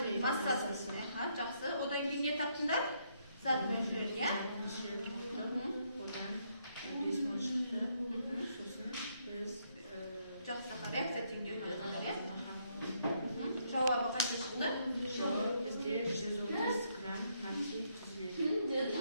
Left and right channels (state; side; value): inverted; both; correlation -0.74